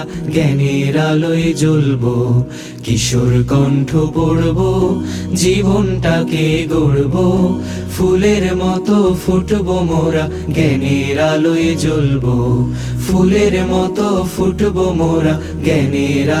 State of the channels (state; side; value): identical; both; correlation 1.00